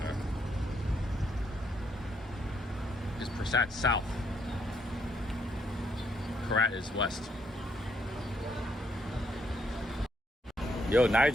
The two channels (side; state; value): both; normal; correlation 0.74